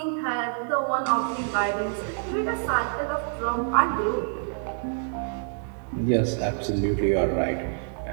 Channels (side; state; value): left; silent; 60 dB below the other